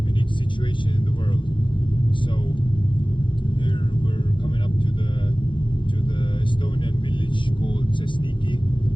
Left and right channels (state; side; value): late; right; 0.24 ms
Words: situation in the world. So here we're coming up to the Estonian village called Sesniki.